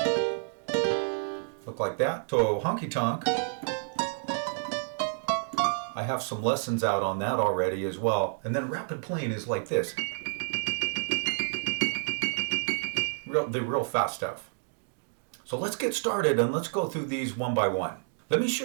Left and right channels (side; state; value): left; silent; digital silence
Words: look like that. So honky tonk, I have some lessons out on that already as well. And then rapid playing is like this. The real fast stuff. So let's get started and let's go through these one by one. Let me